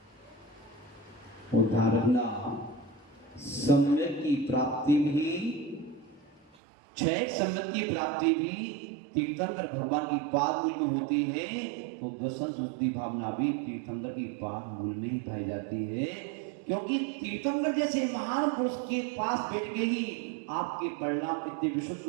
और ध्यान रखना, सम्यक की प्राप्ति भी, क्षय सम्यक की प्राप्ति भी तीर्थंकर भगवान की पाद मूल में होती है, तो दर्शन शुद्धि भावना भी तीर्थंकर की पाद मूल में ही पाई जाती है। क्योंकि तीर्थंकर जैसे महान पुरुष के पास बैठ के ही आपके परिणाम कितने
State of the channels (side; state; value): left; drops out; at 6.5 s